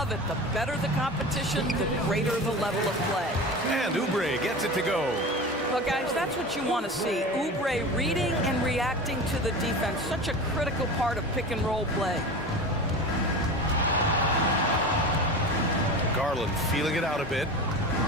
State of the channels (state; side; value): normal; both; correlation 0.31